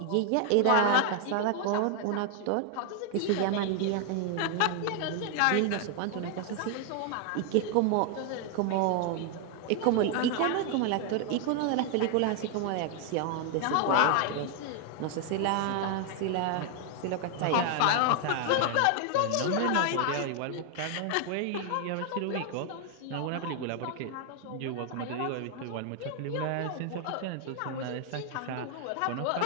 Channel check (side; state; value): both; different; correlation 0.00